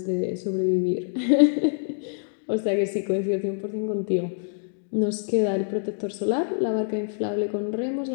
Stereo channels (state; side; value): silent; right; digital silence